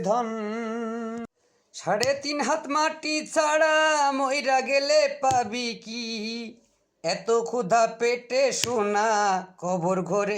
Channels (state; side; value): identical; both; correlation 1.00